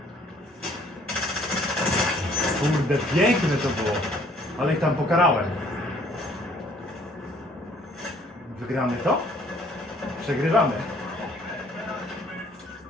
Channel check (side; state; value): both; normal; correlation 0.60